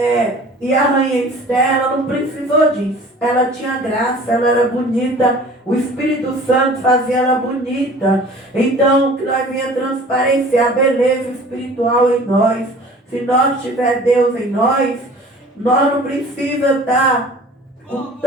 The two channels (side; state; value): both; normal; correlation 0.46